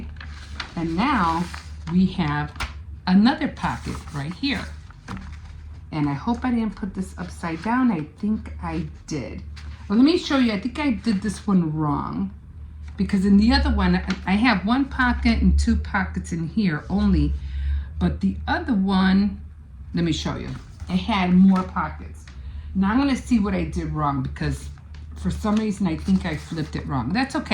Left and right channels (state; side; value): identical; both; correlation 1.00